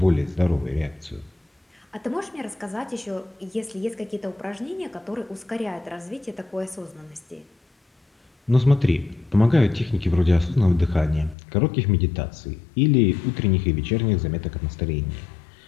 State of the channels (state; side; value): drops out; right; at 11.4 s